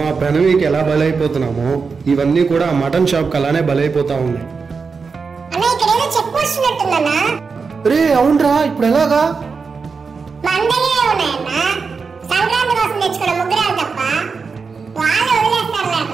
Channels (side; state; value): left; quieter; 5.0 dB